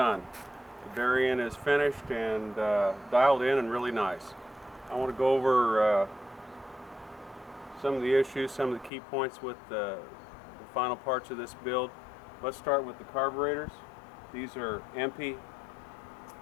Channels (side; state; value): right; drops out; at 8.9 s